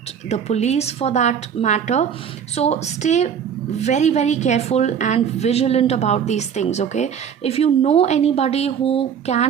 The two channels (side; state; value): left; quieter; 7.9 dB